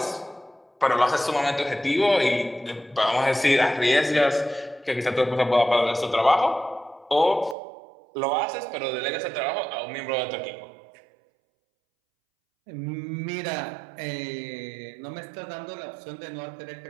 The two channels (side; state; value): left; drops out; at 7.6 s